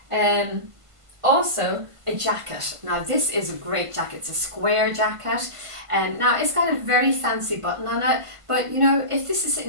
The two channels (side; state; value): left; late; 1.5 ms